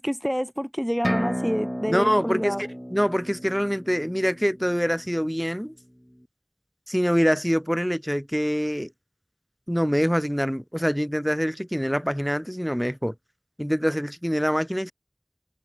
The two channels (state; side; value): identical; both; correlation 1.00